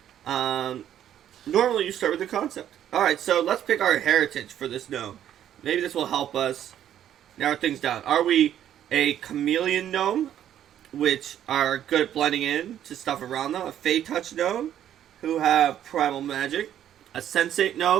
Normally you start with a concept. Alright, so let's pick our heritage for this gnome. Maybe this will help us narrow things down. Are we a chameleon gnome, which are good at blending in to stuff around them? A Fey Touch gnome, who have primal magic? A sensate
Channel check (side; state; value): left; quieter; 10.7 dB